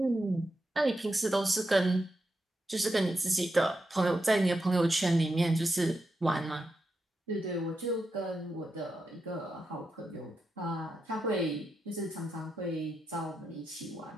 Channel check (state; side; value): normal; both; correlation 0.86